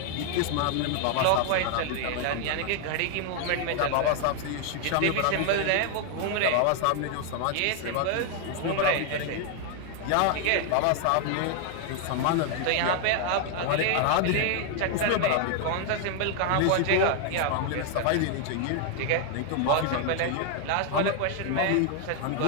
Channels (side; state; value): both; different; correlation 0.00